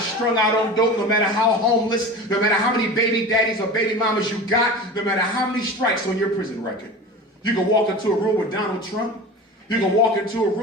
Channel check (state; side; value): normal; both; correlation 0.33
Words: out on dope, no matter how homeless, no matter how many baby daddies or baby mamas you got, no matter how many strikes on your prison record, you can walk into a room with Donald Trump. You can walk into a